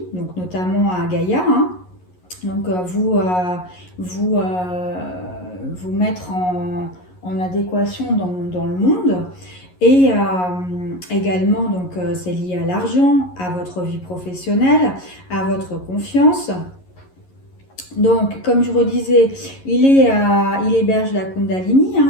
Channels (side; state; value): right; late; 11 ms